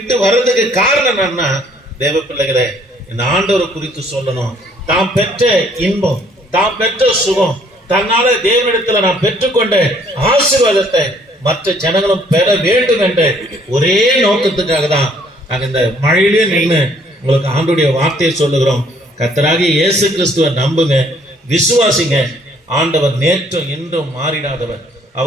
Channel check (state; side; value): normal; both; correlation 0.62